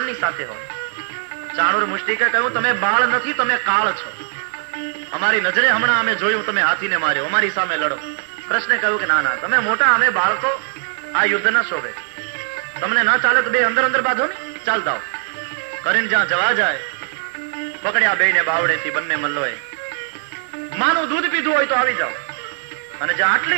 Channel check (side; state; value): left; silent; digital silence